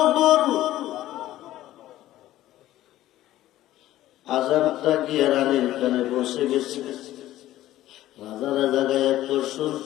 আজানটা গিয়ে রানীর কানে বসে গেছে। রাজারা জায়গায় এত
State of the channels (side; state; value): right; quieter; 14.5 dB